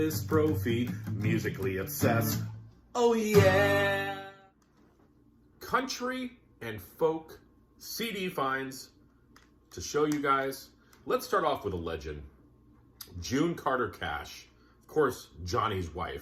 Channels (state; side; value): identical; both; correlation 1.00